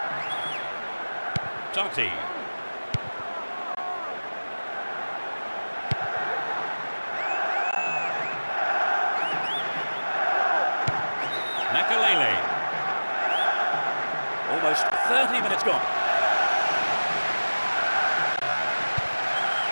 Totti. Nakalele. Almost 30 minutes gone.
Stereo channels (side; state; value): both; inverted; correlation -1.00